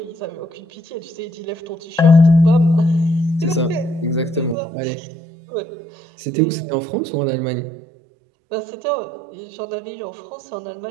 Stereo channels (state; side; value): drops out; left; at 4.5 s